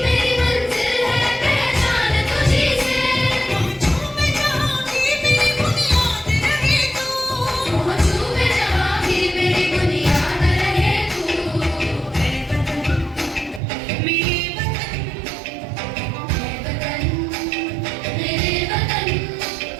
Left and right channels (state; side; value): drops out; left; at 13.6 s